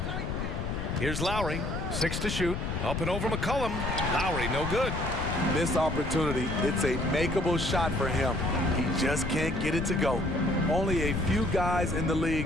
Here's Lowry, 6 to shoot. Up and over McCollum. Lowry, no good. Missed opportunity. It's a makeable shot for him. He just can't get it to go. Only a few guys in the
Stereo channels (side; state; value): left; noise; rumble, 3 dB below the sound